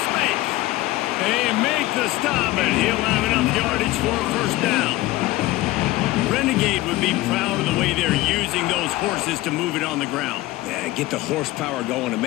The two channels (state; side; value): quieter; right; 17.9 dB